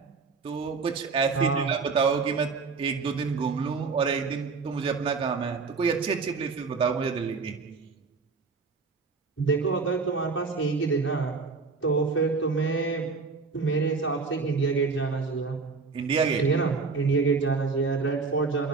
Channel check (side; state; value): left; quieter; 4.6 dB